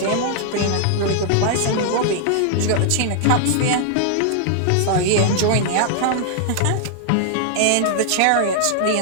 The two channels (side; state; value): both; different; correlation 0.00